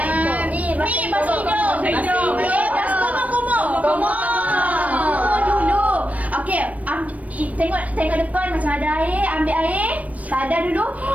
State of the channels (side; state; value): left; late; 0.069 ms